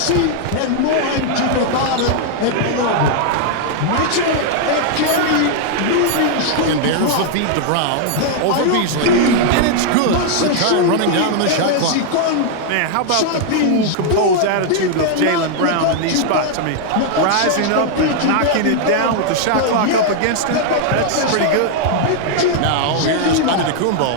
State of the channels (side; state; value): both; different; correlation 0.00